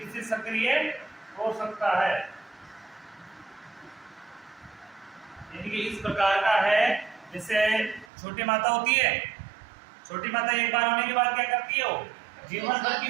यानी कि इस प्रकार का है, जैसे छोटी माता होती है। छोटी माता एक बार होने के बाद क्या करती है? वो जीवन भर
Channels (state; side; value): drops out; left; at 8.1 s